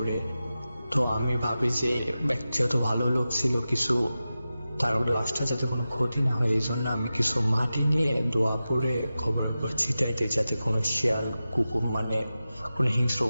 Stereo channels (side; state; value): both; inverted; correlation -0.94